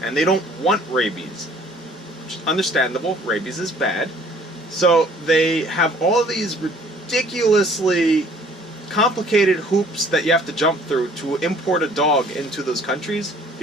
and they don't want rabies. Which is understandable. Rabies is bad. So they have all of these ridiculously complicated hoops that you have to jump through to import a dog into those countries,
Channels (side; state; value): both; normal; correlation 0.56